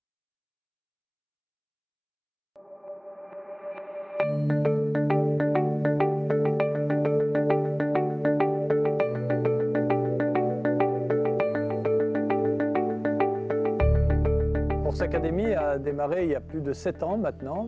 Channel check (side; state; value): both; identical; correlation 1.00